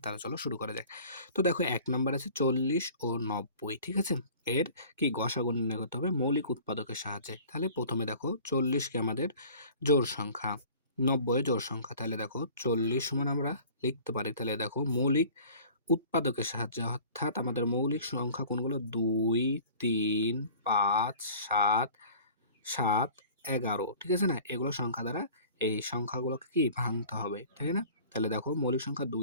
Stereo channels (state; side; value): inverted; both; correlation -0.46